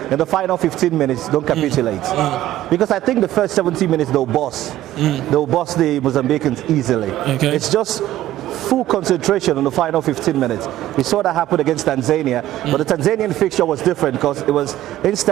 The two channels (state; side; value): quieter; left; 13.9 dB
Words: in the final 15 minutes, don't capitulate. Because I think the first 70 minutes, they'll boss the Mozambicans easily. It's just full concentration on the final 15 minutes. We saw that happen against Tanzania, but the Tanzanian fixture was different because it was